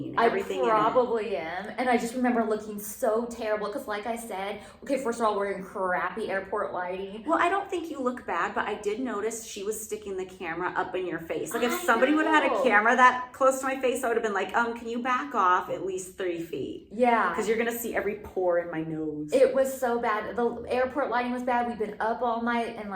Everything I probably am. And I just remember looking so terrible because like I said, okay, first of all, we're in crappy airport lighting. Well, I don't think you look bad, but I did notice she was sticking the camera up in your face. Like if somebody would have had a camera that close to my face, I would have been like, can you back off at least 3 feet? Yeah. Because you're going to see every pore in my nose. It was so bad. The airport lighting was bad. We've been up all night and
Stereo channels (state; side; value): identical; both; correlation 1.00